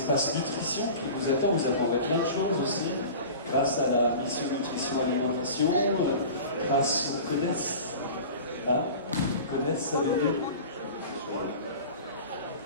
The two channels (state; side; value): inverted; both; correlation -0.37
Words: nutrition qui vous attend. Vous apprendrez plein de choses aussi, grâce à la mission nutrition alimentation, grâce au CODES. Hein? CODES, ça veut dire?